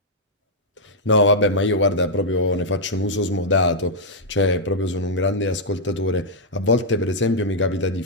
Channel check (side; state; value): both; normal; correlation -0.06